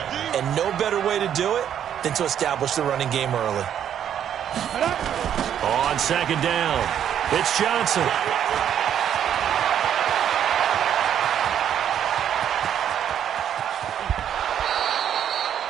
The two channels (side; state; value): left; quieter; 9.6 dB